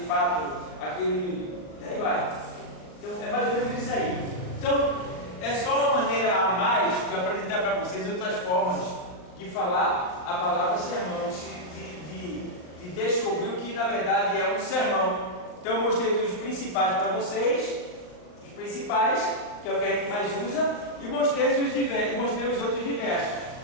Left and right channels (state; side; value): late; right; 39 ms